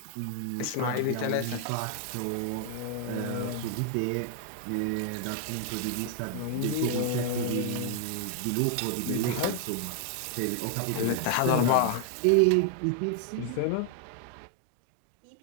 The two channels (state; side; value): different; both; correlation 0.00